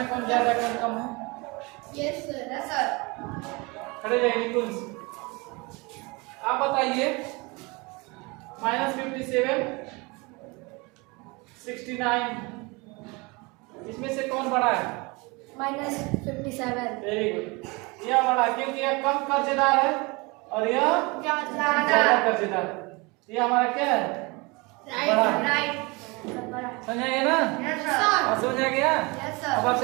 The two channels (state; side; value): quieter; left; 26.6 dB